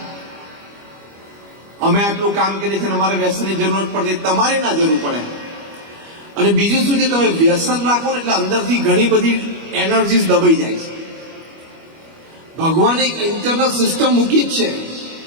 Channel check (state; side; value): late; left; 25 ms